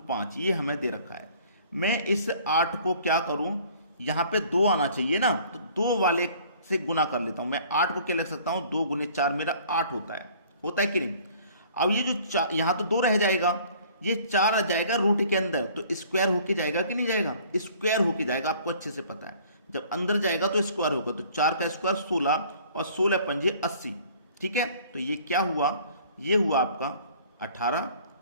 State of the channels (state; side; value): inverted; both; correlation -0.53